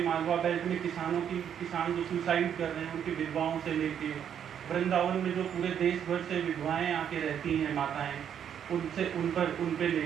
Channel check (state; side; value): quieter; left; 8.8 dB